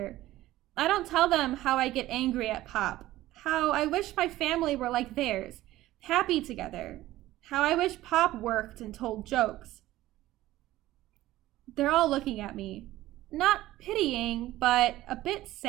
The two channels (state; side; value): quieter; left; 15.8 dB